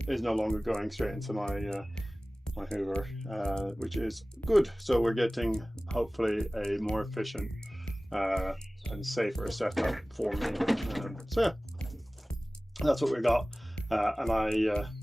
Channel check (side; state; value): both; normal; correlation 0.98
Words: is no longer going straight into my Hoover, which is good. So we're getting hopefully a more efficient and safer setup for me. So yeah, that's what we got, and I